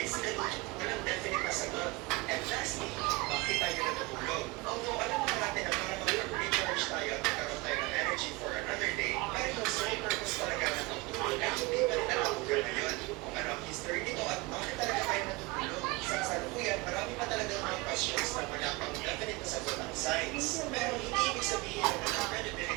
walang definite na sagot. And lastly, bakit tayo natutulog? Although alam naman natin na para mag-recharge tayo at magkaroon tayo ng energy for another day, pero yung sole purpose talaga ng pagtulog ay hindi pa rin natutulog na yun. Kung ano ang history nito at bakit talaga tayo natutulog? Sa kasalukuyan, marami pa talaga mga questions na wala pang definite na sagot ng science. Pero hindi ibig sabihin na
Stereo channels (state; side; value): quieter; left; 23.6 dB